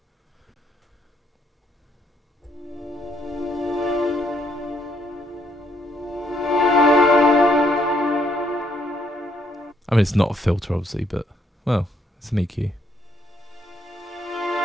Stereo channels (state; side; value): normal; both; correlation 0.71